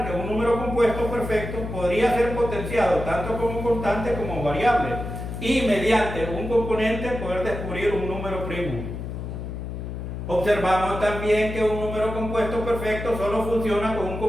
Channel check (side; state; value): left; noise; hum, 7 dB below the sound